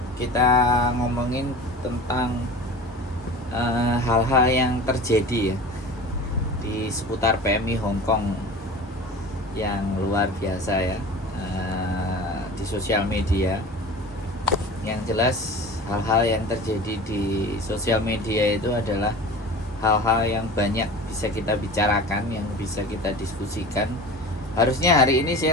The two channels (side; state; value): both; normal; correlation 0.37